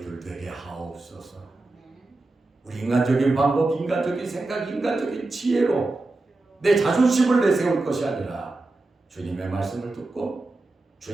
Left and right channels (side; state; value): left; quieter; 3.1 dB